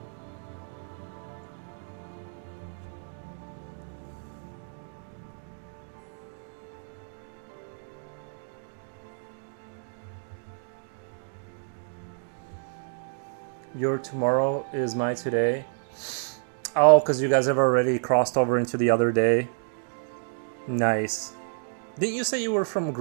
Your tomorrow is my today. Oh, because you guys have already crossed over into the other day. Nice. Didn't you say you were from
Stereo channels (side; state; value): left; silent; digital silence